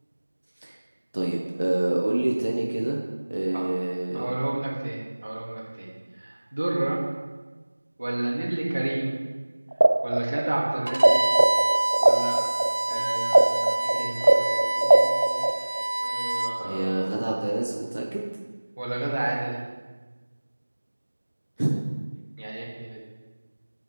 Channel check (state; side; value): inverted; both; correlation -1.00